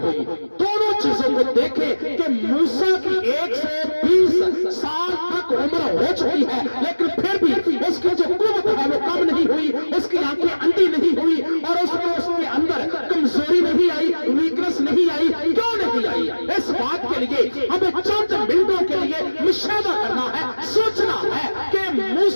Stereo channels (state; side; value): inverted; both; correlation -1.00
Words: हुई। दोनों चीजों को देखें कि मूसा की 120 साल तक उम्र हो चुकी है, लेकिन फिर भी उसकी जो कुव्वत है वो कम नहीं हुई, उसकी आंखें अंधी नहीं हुई और उसके अंदर कमजोरी नहीं आई, वीकनेस नहीं आई। क्यों नहीं आई? इस बात के लिए हमें चंद मिनटों के लिए मुशाहिदा करना है, सोचना है कि